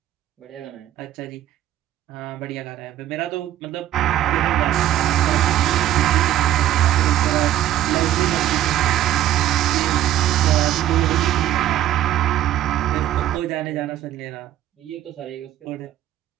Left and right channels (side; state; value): left; quieter; 12.6 dB